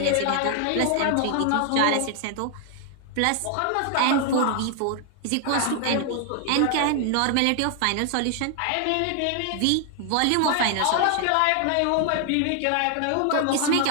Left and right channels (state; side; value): different; both; correlation 0.00